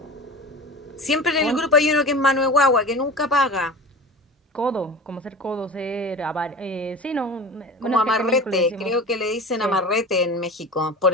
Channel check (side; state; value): both; normal; correlation 0.33